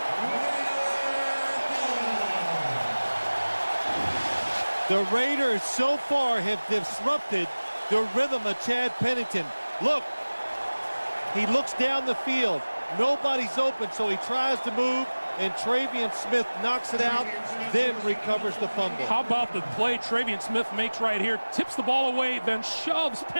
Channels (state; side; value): inverted; both; correlation -1.00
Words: The Raiders so far have disrupted the rhythm of Chad Pennington. Look, he looks down the field. Nobody's open, so he tries to move, and Travian Smith knocks it out, then recovers the fumble. How about the play Travian Smith makes right here? Tips the ball away, then shoves